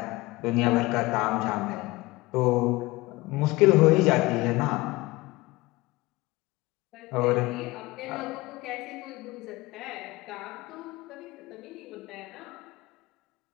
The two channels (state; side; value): quieter; right; 20.9 dB